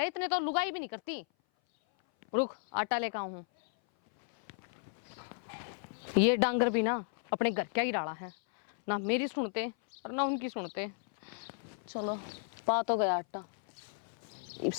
इतने तो लुगाई भी नहीं करती। रुक आटा लेकर आऊं हूं। ये डांगर भी ना अपने घर क्या ही डाला है, ना मेरी सुनते और ना उनकी सुनते। चलो पा तो गया आटा, इब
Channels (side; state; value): right; silent; 55 dB below the other